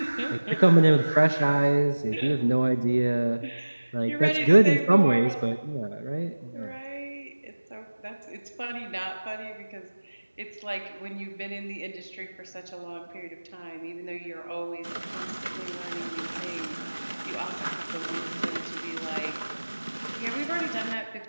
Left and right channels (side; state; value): both; inverted; correlation -1.00